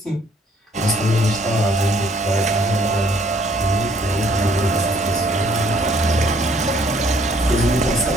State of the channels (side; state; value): both; normal; correlation 0.63